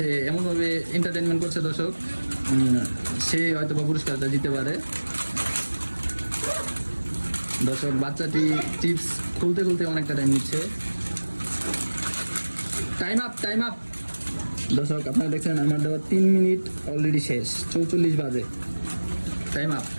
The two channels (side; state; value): both; inverted; correlation -1.00